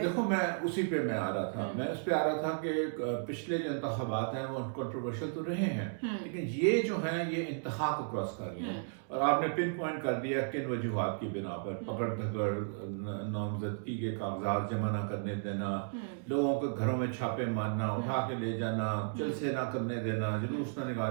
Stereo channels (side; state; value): left; silent; digital silence